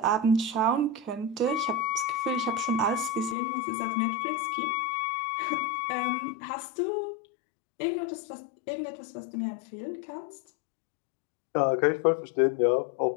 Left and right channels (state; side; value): drops out; right; at 3.4 s